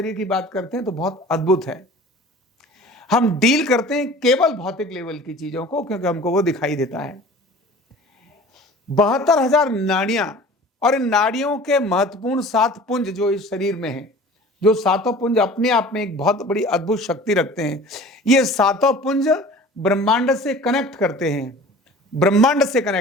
की बात करते हैं तो बहुत अद्भुत है। हम डील करते हैं केवल भौतिक लेवल की चीजों को, क्योंकि हमको वो दिखाई देता है। 72,000 नाड़ियां, और इन नाड़ियों के महत्वपूर्ण 7 पुंज जो इस शरीर में हैं, जो 7 पुंज अपने आप में एक बहुत बड़ी अद्भुत शक्ति रखते हैं। ये 7 पुंज ब्रह्मांड से कनेक्ट करते हैं, ब्रह्मांड से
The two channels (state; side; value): normal; both; correlation 0.43